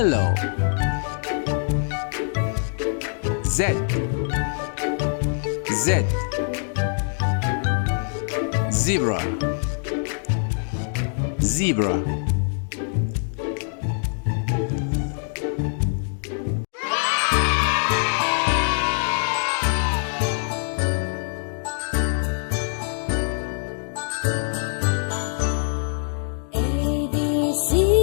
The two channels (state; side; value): silent; right; 60 dB below the other